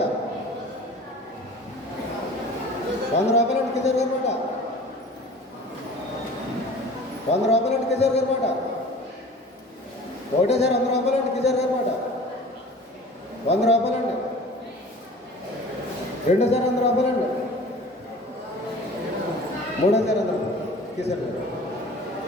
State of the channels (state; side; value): normal; both; correlation 0.43